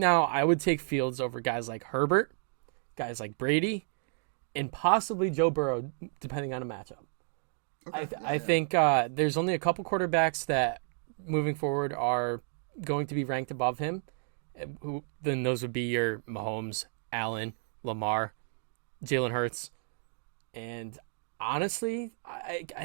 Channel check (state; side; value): silent; left; 57 dB below the other